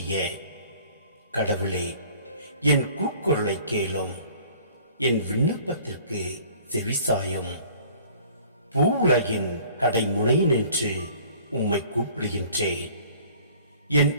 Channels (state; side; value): inverted; both; correlation -0.52